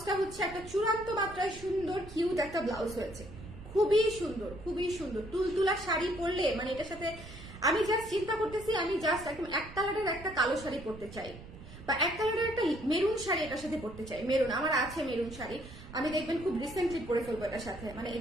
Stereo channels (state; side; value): noise; right; rumble, 15 dB below the sound